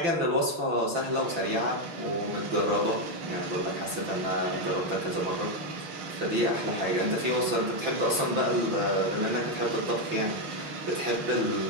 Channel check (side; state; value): left; late; 6.0 ms